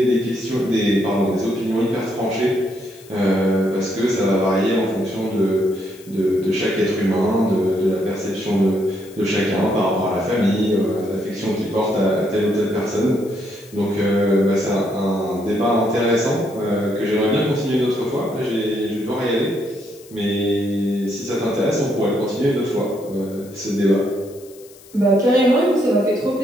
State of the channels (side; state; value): left; noise; hiss, 23 dB below the sound